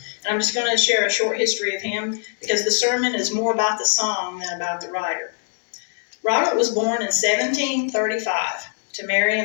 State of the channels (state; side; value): silent; right; digital silence